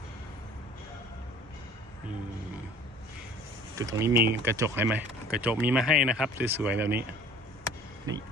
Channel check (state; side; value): normal; both; correlation 0.48